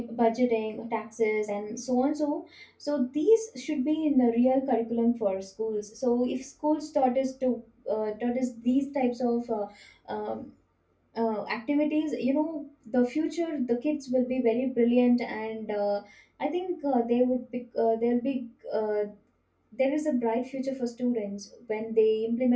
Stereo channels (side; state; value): both; identical; correlation 1.00